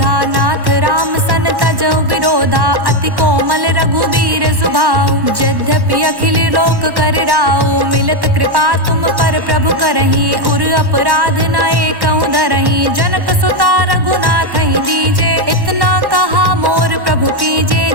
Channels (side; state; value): left; late; 1.1 ms